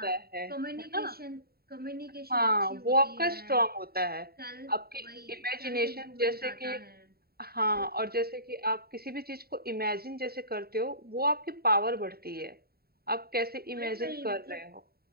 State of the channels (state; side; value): late; left; 0.45 ms